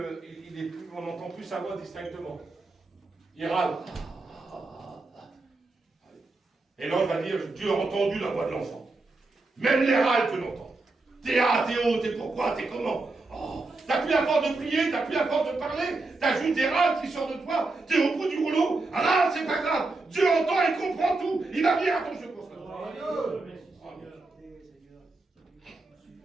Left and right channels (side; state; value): left; quieter; 3.4 dB